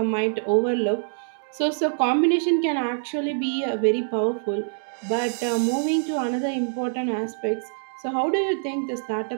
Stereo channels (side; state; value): left; silent; digital silence